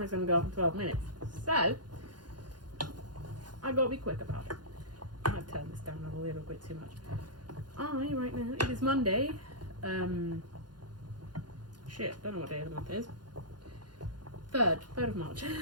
is going to go off in 12 minutes. So, I've got to be quick about it. I've turned this down a little bit too much. Right now, it is Monday. Shit, don't know what day of the month it is. 3rd of March.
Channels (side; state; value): left; late; 0.70 ms